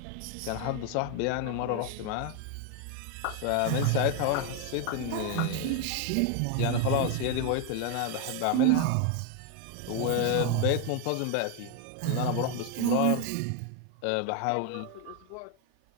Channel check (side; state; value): both; different; correlation 0.01